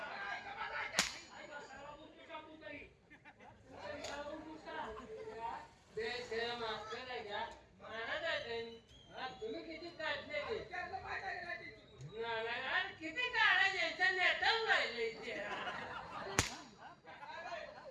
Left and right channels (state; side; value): identical; both; correlation 1.00